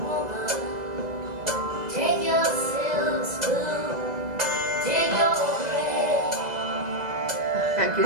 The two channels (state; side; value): late; left; 2.0 ms